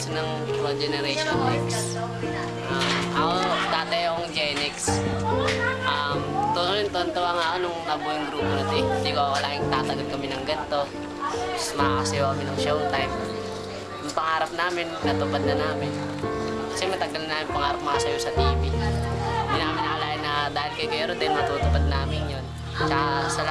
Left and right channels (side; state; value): both; identical; correlation 1.00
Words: ng Pro Generation X. Ako dati akong Gen X. Tuntua nga ako nung nabuo yung grupo na ito eh. Hindi ko akalaing tatagal kami ng ganito. Tapos makakasayaw kami ng showtime. Yung pangarap namin, natupad na namin. Kasi matagal na namin pangarap makasayaw sa TV. Hindi namin nakalain na dahil kay Kuya Rodel matutupad namin yun. Tsaka